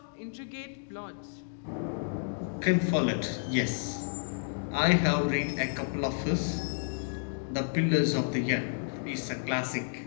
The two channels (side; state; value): right; silent; digital silence